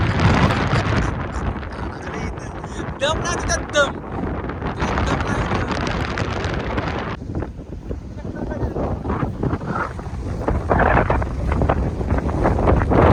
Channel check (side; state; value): both; identical; correlation 1.00